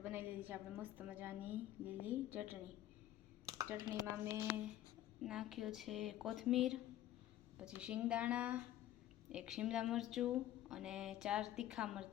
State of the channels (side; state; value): right; quieter; 13.1 dB